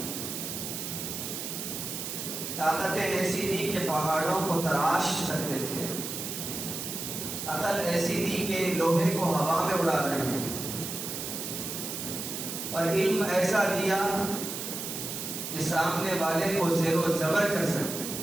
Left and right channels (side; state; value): right; noise; hiss, 5 dB below the sound